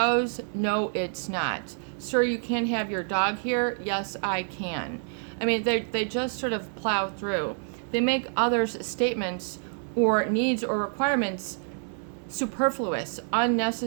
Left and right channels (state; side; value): silent; left; 60 dB below the other